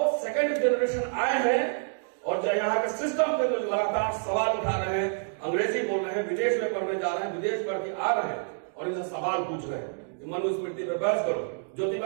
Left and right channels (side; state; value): left; silent; digital silence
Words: सेकंड जनरेशन आए हैं और जो यहाँ के सिस्टम पे जो लगातार सवाल उठा रहे हैं, अंग्रेजी बोल रहे हैं, विदेश में पढ़ने जा रहे हैं, विदेश पढ़ के आ रहे हैं और इनसे सवाल पूछ रहे हैं। मनुस्मृति पे बहस करो,